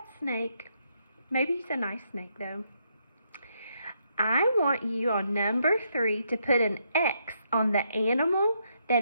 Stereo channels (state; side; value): inverted; both; correlation -0.77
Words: snake. Maybe he's a nice snake, though. I want you on number 3 to put an X on the animal